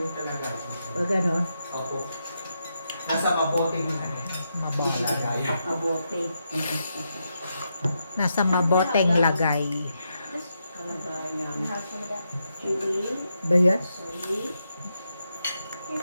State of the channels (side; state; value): both; inverted; correlation -0.83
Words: kalagayan. O gano'n? Opo. Nasa mabuting yung ano. Mabuting. Kalagayan. Abote. Nasa maboteng lagay. Kalagayan. You have some of that. Chili. Ba yan? Sorry.